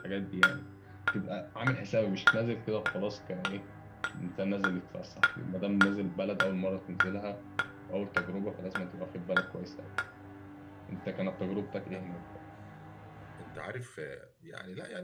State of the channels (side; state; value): both; identical; correlation 1.00